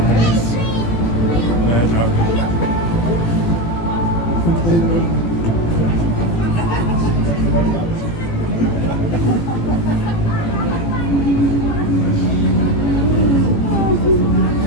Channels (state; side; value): late; right; 18 ms